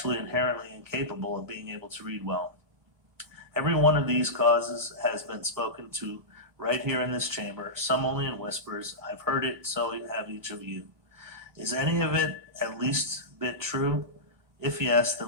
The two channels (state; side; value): late; left; 1.2 ms